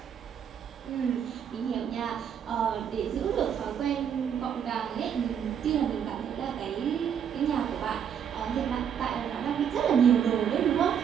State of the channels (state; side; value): quieter; left; 8.2 dB